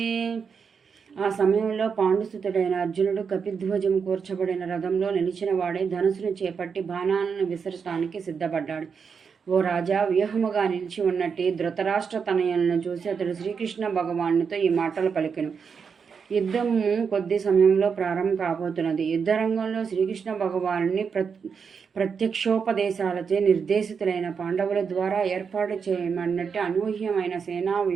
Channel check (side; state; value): left; quieter; 6.1 dB